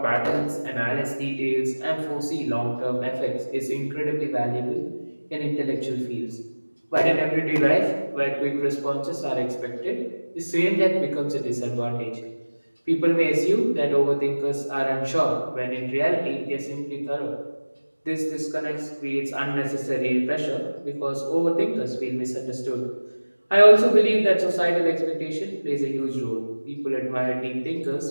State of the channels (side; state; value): both; inverted; correlation -1.00